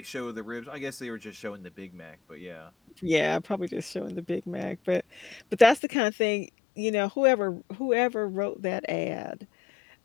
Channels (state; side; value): drops out; right; at 5.8 s